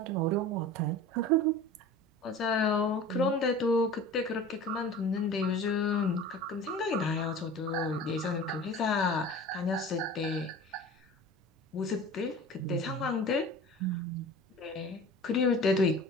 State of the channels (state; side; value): normal; both; correlation 0.39